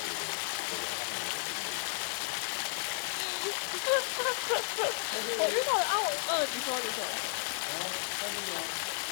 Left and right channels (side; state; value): right; silent; digital silence